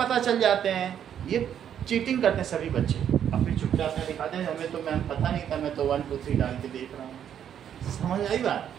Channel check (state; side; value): quieter; left; 9.3 dB